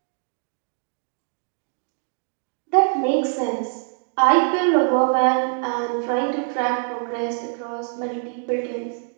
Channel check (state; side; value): silent; left; 63 dB below the other